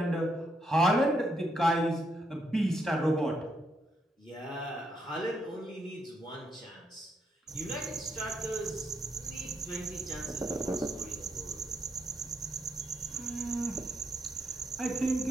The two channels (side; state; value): both; normal; correlation 0.77